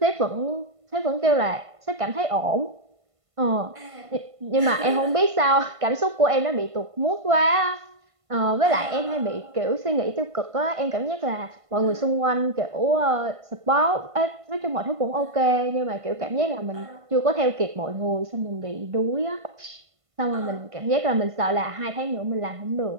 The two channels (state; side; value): late; left; 1.5 ms